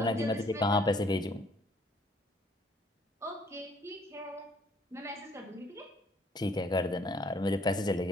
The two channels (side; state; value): both; normal; correlation 0.62